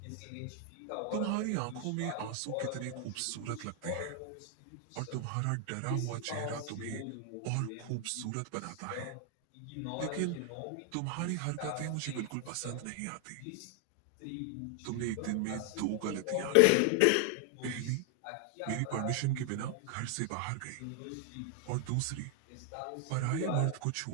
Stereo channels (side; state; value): both; different; correlation 0.00